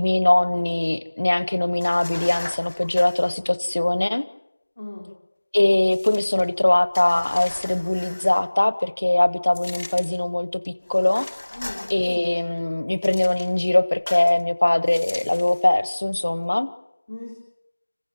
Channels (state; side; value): inverted; both; correlation -1.00